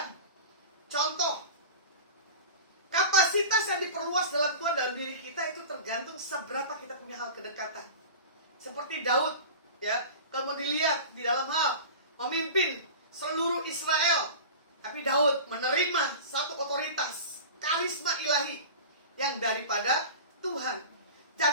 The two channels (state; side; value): inverted; both; correlation -0.34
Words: Contoh, kapasitas yang diperluas dalam Tuhan dalam diri kita itu tergantung seberapa kita punya hal kedekatan. Seperti Daud, ya, kalau dilihat di dalam hal memimpin seluruh Israel, tapi Daud menerima satu otoritas, karisma ilahi yang daripada Tuhan.